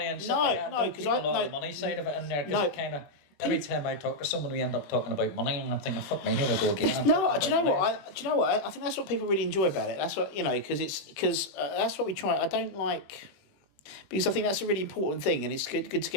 and stuff like that. No, because I know the money side of it in there, because it kind of. Every time I talk to someone, we end up talking about money, and I'm thinking, "Fuck me, here we go again." Do you know what? I think that's what people really enjoy about it. That's what because that's what we try. I don't like because I think that's a really important thing, and it's good to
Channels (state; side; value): late; right; 21 ms